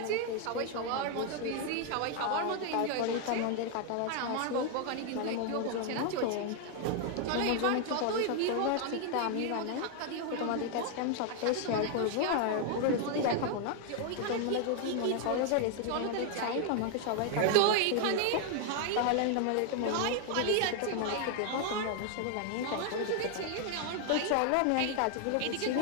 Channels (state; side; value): different; both; correlation 0.00